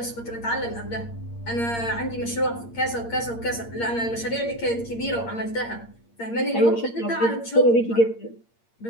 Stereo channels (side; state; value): right; late; 8.7 ms